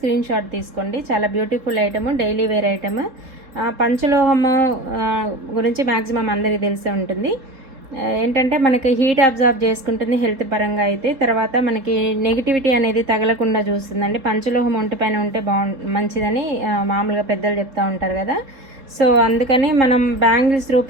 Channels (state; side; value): late; left; 3.7 ms